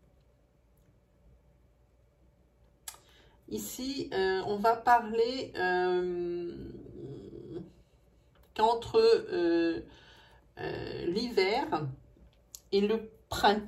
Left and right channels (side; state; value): both; identical; correlation 1.00